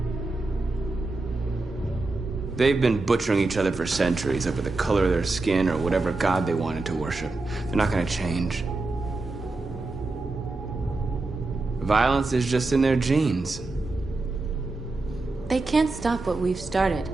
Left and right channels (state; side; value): quieter; left; 3.3 dB